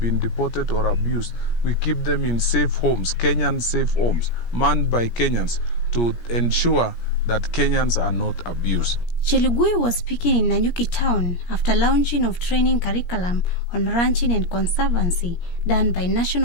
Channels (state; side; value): late; right; 17 ms